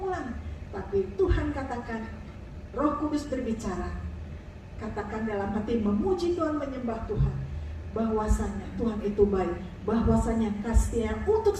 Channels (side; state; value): both; identical; correlation 1.00